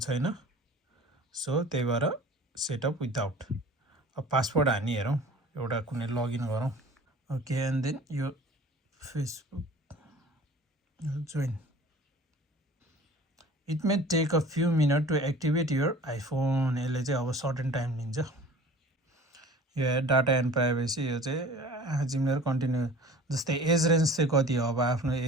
सो त्यही भएर सेटअप विथआउट। अब पासवर्ड हानी हेरौँ, एउटा कुनै लगइन गरौँ। ओके, एन्ड देन यो Facebook join. It may take a few minute to activate your iPhone. यसले चाहिँ अब सर्टेन टाइम लिन्छ। यो डाटा एन्ड प्राइभेसी, यो चाहिँ जिमेर कन्टिन्यू। जस्तै एज रेन्ज चाहिँ कति हो, अब आफ्नो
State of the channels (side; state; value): both; normal; correlation 0.44